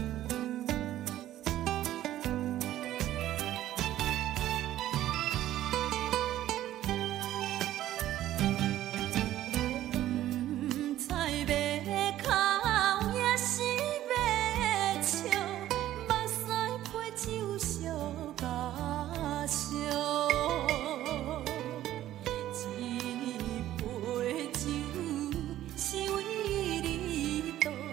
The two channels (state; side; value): quieter; left; 13.3 dB